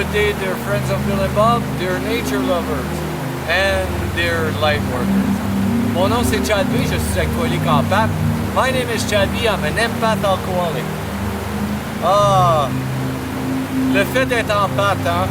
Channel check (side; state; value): both; identical; correlation 1.00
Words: day, dear friends of Bill and Bob, dear nature lovers and dear light workers. Mon nom c'est Chad B, je suis alcoolique en pâte. My name is Chad B, I'm an empath alcoholic. Ah, le fait d'être en pâte, hein?